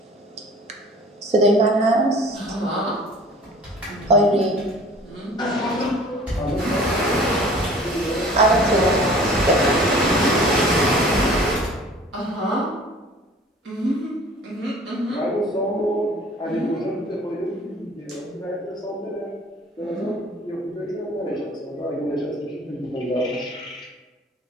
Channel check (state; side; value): normal; both; correlation 0.48